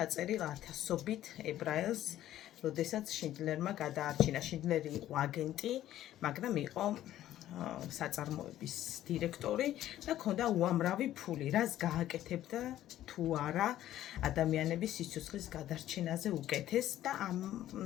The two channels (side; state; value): right; quieter; 13.0 dB